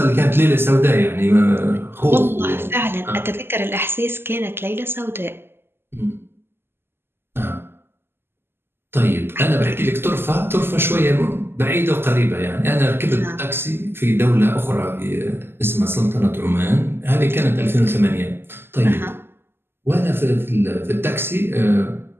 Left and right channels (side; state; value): left; late; 0.11 ms